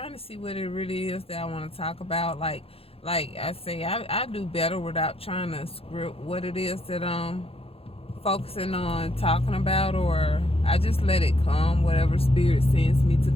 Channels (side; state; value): right; late; 0.28 ms